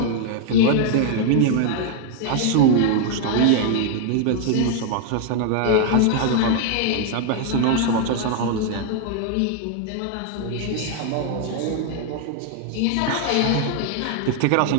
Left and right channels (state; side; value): different; both; correlation 0.00